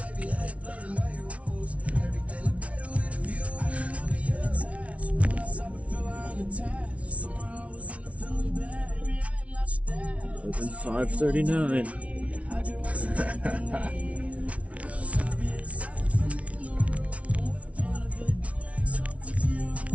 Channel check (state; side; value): late; left; 0.064 ms